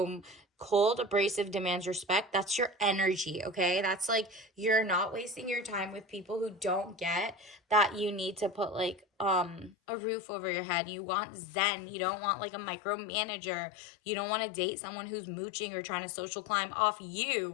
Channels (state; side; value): drops out; right; at 9.8 s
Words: cold, abrasive, demands respect. That's your energy, okay? That's like, you're not wasting your time with people who don't get that you need to put like a roof over your head. You want Zen. You don't want like a micromanager. You don't want to date someone who's mooching or trying to social climb off